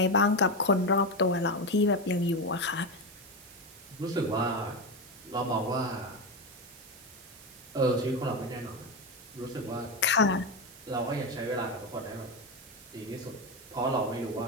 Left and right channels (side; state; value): right; noise; hiss, 20 dB below the sound